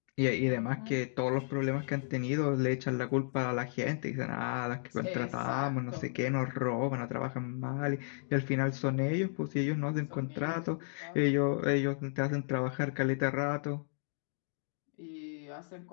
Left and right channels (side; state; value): right; silent; digital silence